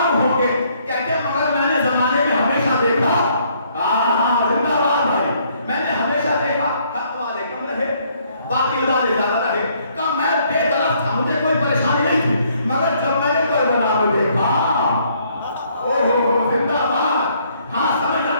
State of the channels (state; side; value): inverted; both; correlation -0.66